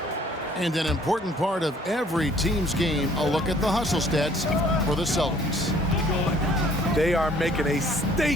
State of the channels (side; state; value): both; normal; correlation 0.58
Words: And an important part of every team's game, a look at the hustle stats for the Celtics. They are making a